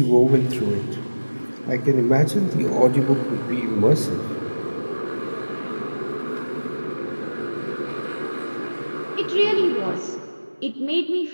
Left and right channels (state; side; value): inverted; both; correlation -1.00